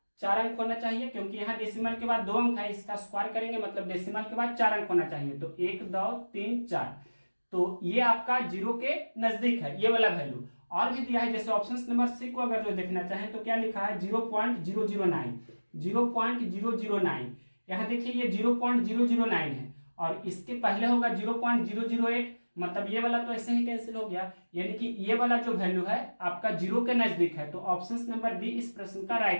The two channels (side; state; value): both; inverted; correlation -1.00